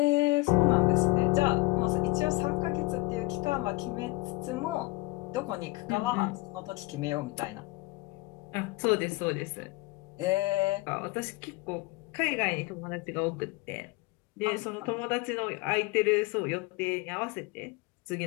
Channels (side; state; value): right; quieter; 22.4 dB